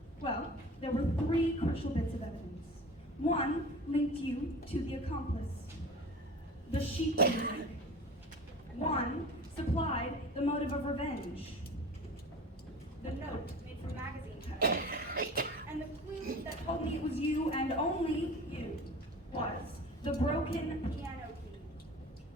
Well, there were 3 crucial bits of evidence. One linked you to the accomplice, the sheet music. One supplied the motive of revenge, the note made from magazine covers. And the clue that told me it was you and only you was the broken piano key.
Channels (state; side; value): normal; both; correlation 0.38